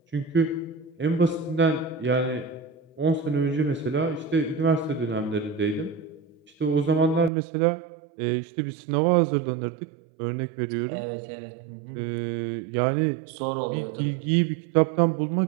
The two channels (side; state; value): left; drops out; at 7.3 s